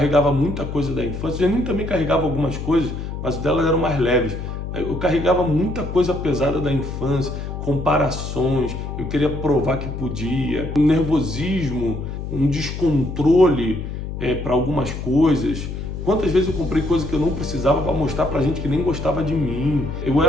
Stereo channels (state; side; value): noise; left; hum, 6 dB below the sound